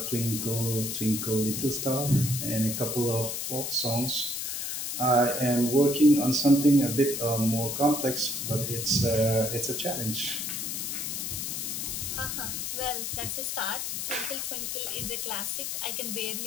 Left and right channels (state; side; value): noise; left; hiss, 3 dB below the sound